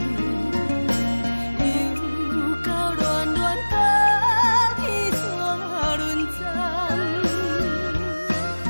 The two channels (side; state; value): both; inverted; correlation -1.00